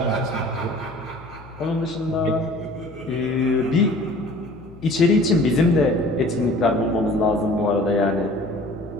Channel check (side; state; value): left; noise; hum, 20 dB below the sound